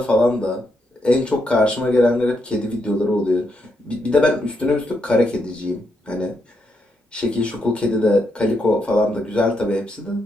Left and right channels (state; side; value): normal; both; correlation 0.80